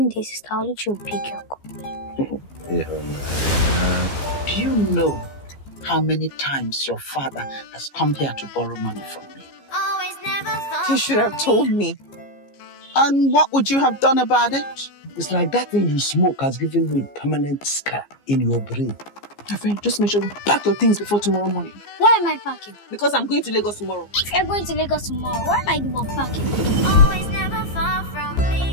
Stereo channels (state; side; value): late; right; 15 ms